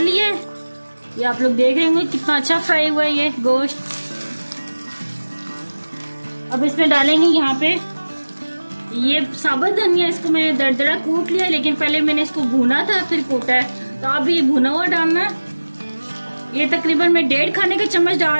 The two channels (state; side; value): inverted; both; correlation -1.00